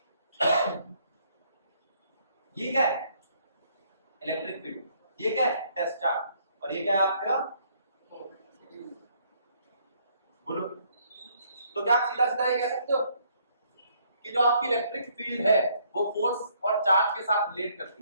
ये क्या है, इलेक्ट्रिक फील्ड, ये क्या है, टेस्ट चार्ज, और ये क्या है आपका, बोलो। तो क्या आप सीधा सीधा ये कह सकते हो कि जो आपकी इलेक्ट्रिक फील्ड है वो फोर्स और चार्ज के साथ रिलेट करती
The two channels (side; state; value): both; inverted; correlation -0.67